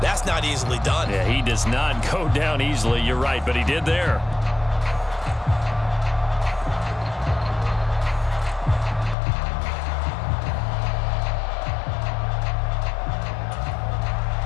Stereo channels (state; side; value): drops out; right; at 9.2 s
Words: that's not easily done. Yeah, he does not go down easily. You're right, but he did there.